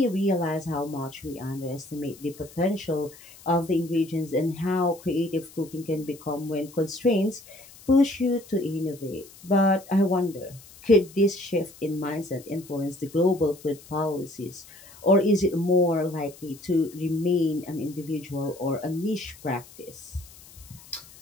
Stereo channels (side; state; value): left; noise; hiss, 21 dB below the sound